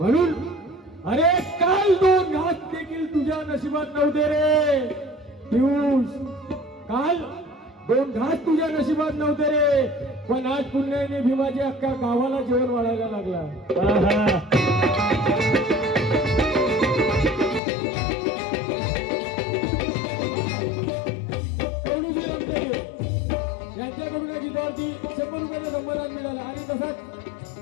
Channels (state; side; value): drops out; right; at 17.6 s